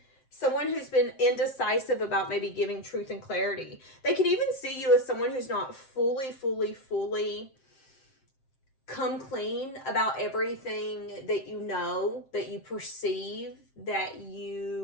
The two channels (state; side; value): late; right; 7.6 ms